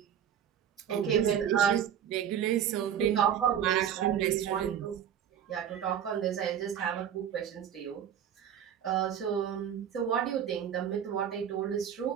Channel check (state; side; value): quieter; left; 9.3 dB